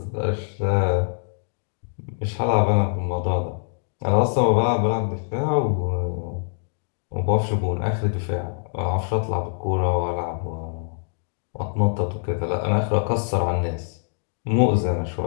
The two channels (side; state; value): right; silent; digital silence